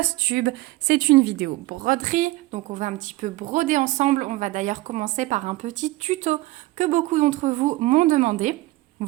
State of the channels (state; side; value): quieter; left; 19.3 dB